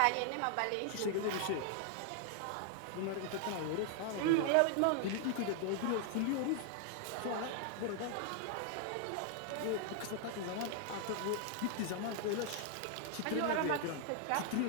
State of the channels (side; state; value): both; different; correlation 0.00